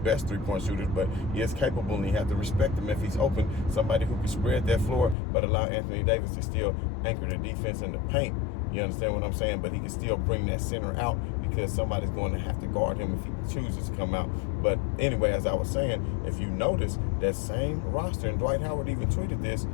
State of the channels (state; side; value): drops out; right; at 5.2 s